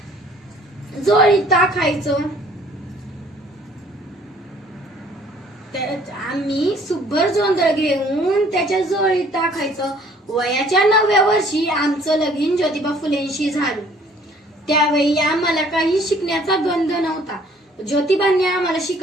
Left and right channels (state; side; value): normal; both; correlation 0.57